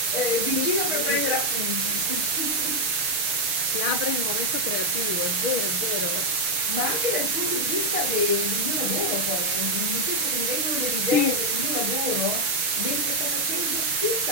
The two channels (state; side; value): late; left; 6.5 ms